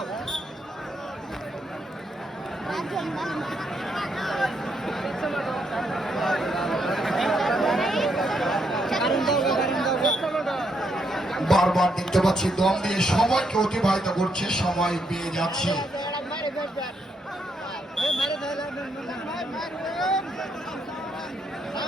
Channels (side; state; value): both; normal; correlation 0.77